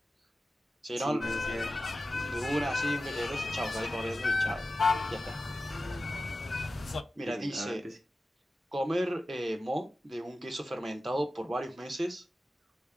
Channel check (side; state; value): both; normal; correlation 0.94